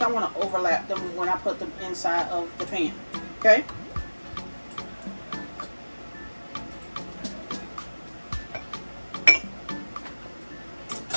I want to overlap them when I put them inside of the pan, okay?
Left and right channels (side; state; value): both; inverted; correlation -1.00